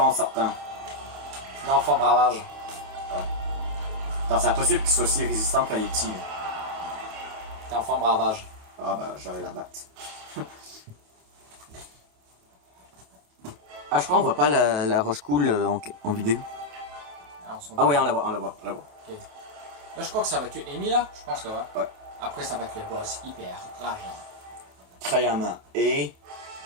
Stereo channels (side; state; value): left; late; 28 ms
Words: sortant. Non, forme ravage. Attends, c'est impossible qu'il soit aussi résistant quand il est petit. Là. T'es en forme ravage. Ah, bah, j'allais la battre. Ah, je crois qu'on voit pas la roche cool en vidéo. Ah, oui, on la voit. Okay. Là, je crois que ça va être Amy, là. Je pense que ouais. Ouais. Après, ça va être le boss hyper rageant. Krayama et.